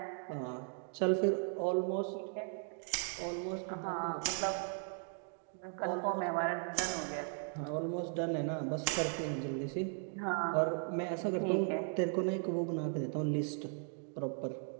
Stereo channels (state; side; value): silent; left; 53 dB below the other